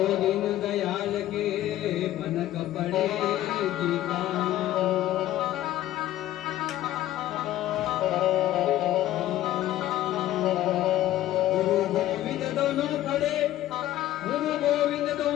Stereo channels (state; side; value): quieter; right; 13.9 dB